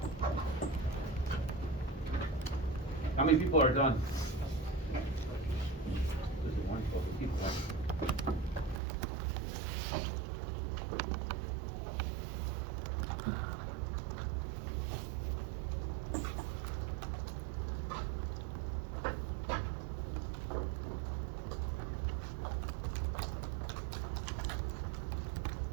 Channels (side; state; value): left; drops out; at 8.8 s